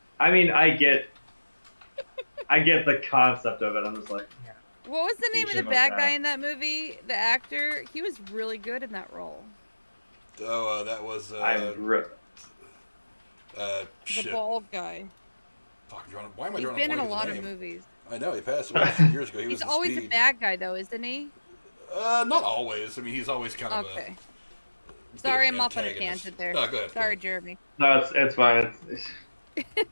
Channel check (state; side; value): inverted; both; correlation -1.00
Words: I mean, I get the concept of it. I'm just like, yeah. What was the name of the bad guy in that movie? The actor? He was really good in that role. Oh, that was the bald guy. Fuck, why am I drawing a blank? He's been in a lot of movies. I know, he passed away a few years ago. He's always a bad guy, though, isn't he? Not always. I mean, he's always kind of okay. Sorry, I'm off on a tangent there. No, go ahead. Sorry, Jeremy. No, it's fine. It's